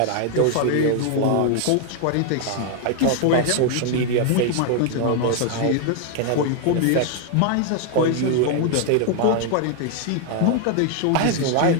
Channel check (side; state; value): both; different; correlation 0.00